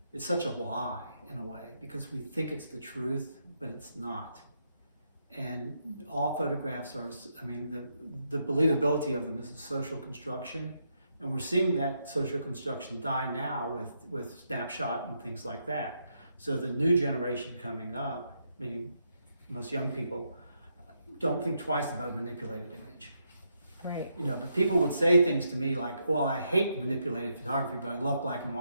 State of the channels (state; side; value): inverted; both; correlation -0.79